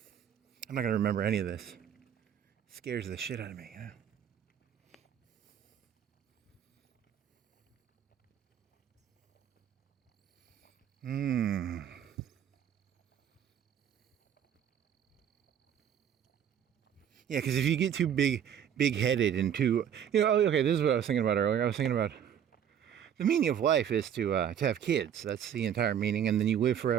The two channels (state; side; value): quieter; left; 9.1 dB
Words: not going to remember any of this. It scares the shit out of me, Yeah, because if you get too big-headed and too, okay, this is what I was thinking about earlier. I was thinking about the meaning of life is to have kids. That's the entire meaning, and then you live